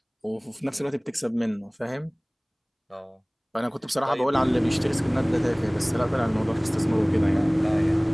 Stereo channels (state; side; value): identical; both; correlation 1.00